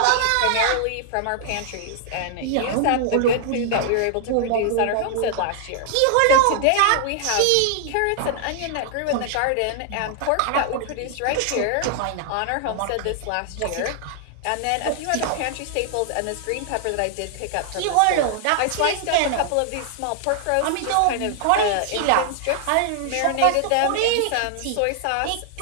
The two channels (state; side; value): different; both; correlation 0.00